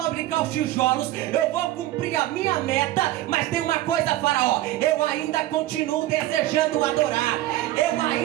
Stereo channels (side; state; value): left; quieter; 15.3 dB